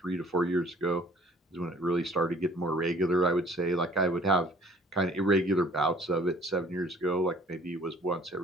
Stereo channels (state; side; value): normal; both; correlation 0.55